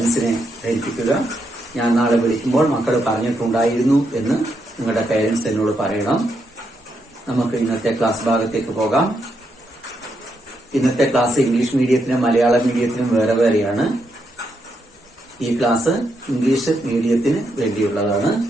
ധരിപ്പിക്കുക. ഞാൻ നാളെ വിളിക്കുമ്പോൾ മക്കൾ പറഞ്ഞിട്ടുണ്ടായിരുന്നു എന്ന് നിങ്ങളുടെ പാരന്റ്സ് എന്നോട് പറയണം. നമുക്ക് ഇന്നത്തെ ക്ലാസ് ഭാഗത്തേക്ക് പോകാം. ഇന്നത്തെ ക്ലാസ് ഇംഗ്ലീഷ് മീഡിയത്തിനും മലയാളം മീഡിയത്തിനും വേറെ വേറെയാണ്. ഈ ക്ലാസ് ഇംഗ്ലീഷ് മീഡിയത്തിന് വേണ്ടിയുള്ളതാണ്.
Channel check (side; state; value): both; normal; correlation 0.80